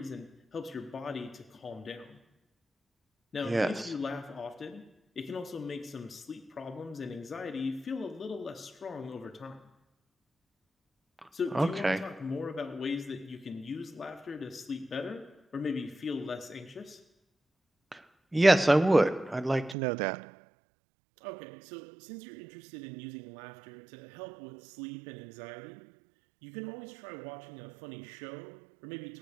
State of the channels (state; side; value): drops out; left; at 19.8 s